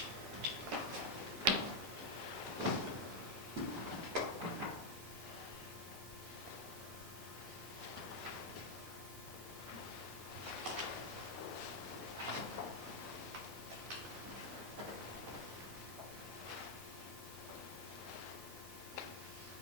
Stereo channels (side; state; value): both; normal; correlation 0.00